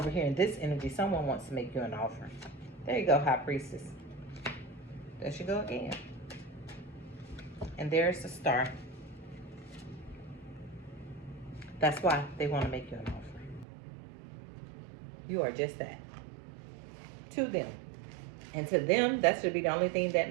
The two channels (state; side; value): drops out; left; at 13.7 s